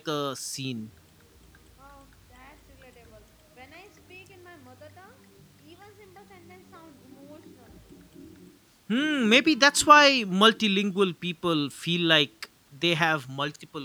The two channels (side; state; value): both; identical; correlation 1.00